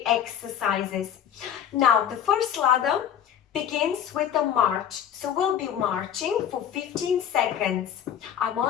exercises. Now the first ladder begins with a march. So we'll be marching for 15 seconds. I'm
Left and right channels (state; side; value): quieter; right; 9.4 dB